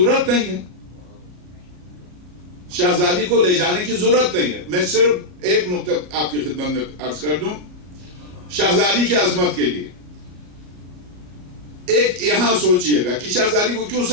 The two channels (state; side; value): late; left; 34 ms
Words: نہیں ہے. شہزادی کو لے جانے کی ضرورت نہیں ہے. میں صرف ایک نقطہ آپ کی خدمت میں عرض کر دوں شہزادی کی عظمت کے لیے. ایک یہاں سوچئے گا کہ شہزادی کو کیوں